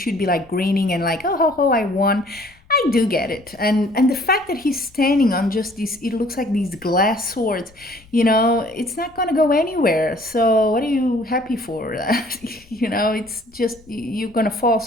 be like grinning and like, oh, ho, ho, I won. I do get it. And the fact that he's standing on just these, it looks like these glass swords, you know, it's not going to go anywhere. So what are you happy for? You know, it's just, you're going to fall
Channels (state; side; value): noise; left; rumble, 27 dB below the sound